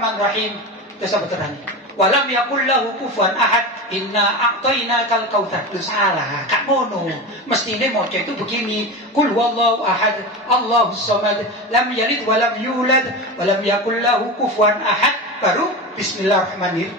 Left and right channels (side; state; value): both; normal; correlation 0.25